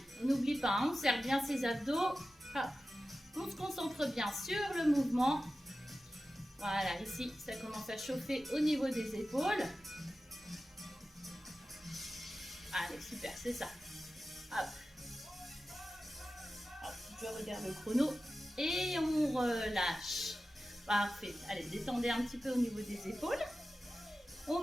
on n'oublie pas, on serre bien ses abdos. Hop. On se concentre bien sur le mouvement. Voilà, ici, ça commence à chauffer au niveau des épaules. Allez, super, c'est ça. Hop. Hop, je regarde le chrono. Et on relâche. Parfait. Allez, détendez un petit peu au niveau des épaules. On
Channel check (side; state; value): both; normal; correlation 0.94